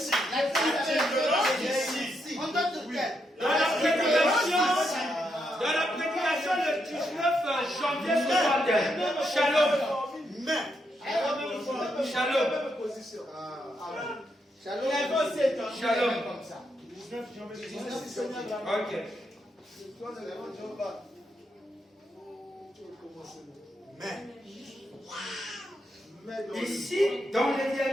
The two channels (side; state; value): both; normal; correlation 0.80